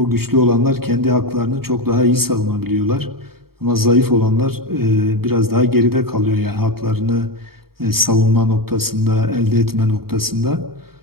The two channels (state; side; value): late; left; 0.94 ms